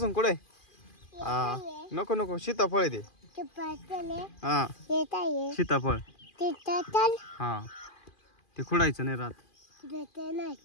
कुठे? हा नको नको सीताफळ आहे ते. हा सीताफळ हा ते खुडायचं नाही राहत.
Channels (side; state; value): right; late; 2.4 ms